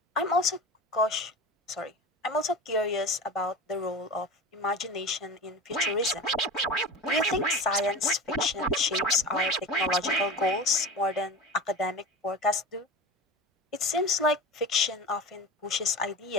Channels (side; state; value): both; normal; correlation 0.31